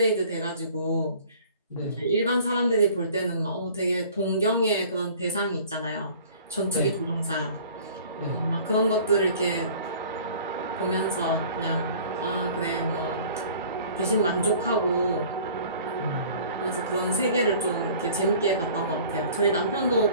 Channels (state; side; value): inverted; both; correlation -0.49